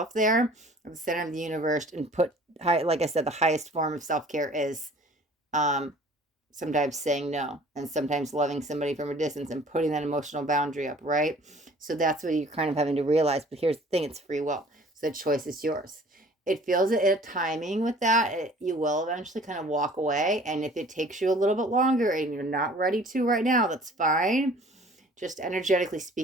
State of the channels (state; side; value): normal; both; correlation 0.50